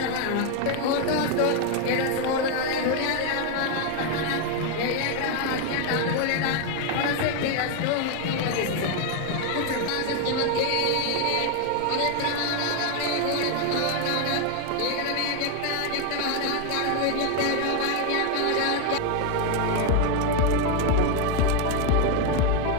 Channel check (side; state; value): both; different; correlation 0.01